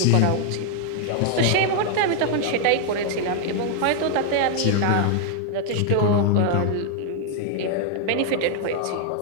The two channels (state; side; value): different; both; correlation 0.00